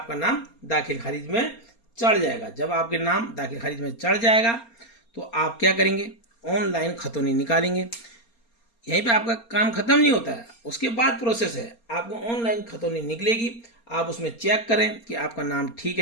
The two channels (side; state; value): right; late; 4.3 ms